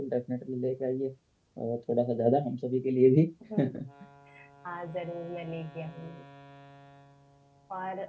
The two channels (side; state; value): both; identical; correlation 1.00